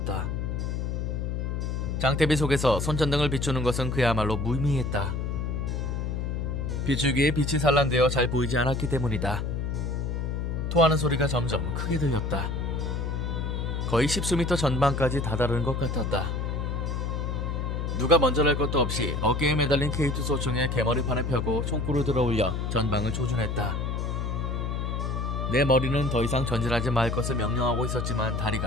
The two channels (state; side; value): noise; left; hum, 1 dB below the sound